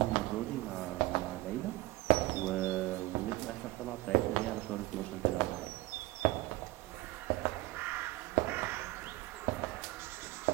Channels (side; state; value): left; quieter; 19.6 dB